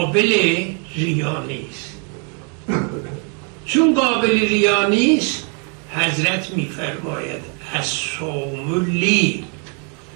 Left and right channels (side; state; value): left; quieter; 38.0 dB